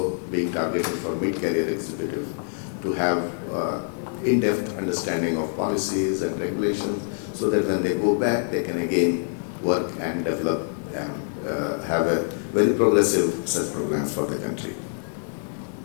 being targeted for mid-career executives to have in-depth understanding of policies and regulations, so that when they go back, they can again work and develop and have a very progressive such programs for the country.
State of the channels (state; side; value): silent; right; 62 dB below the other